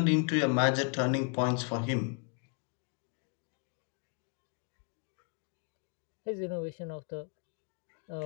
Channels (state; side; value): quieter; right; 37.8 dB